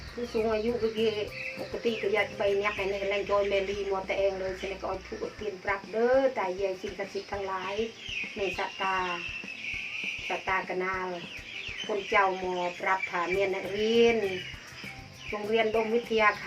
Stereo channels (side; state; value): both; identical; correlation 1.00